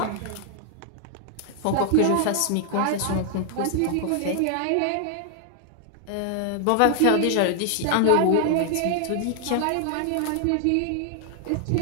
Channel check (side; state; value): both; different; correlation 0.00